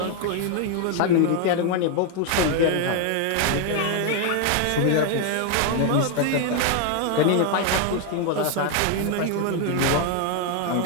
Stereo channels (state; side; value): different; both; correlation 0.00